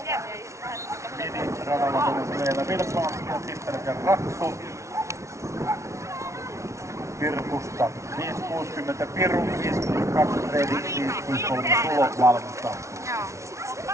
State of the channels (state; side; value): late; left; 0.14 ms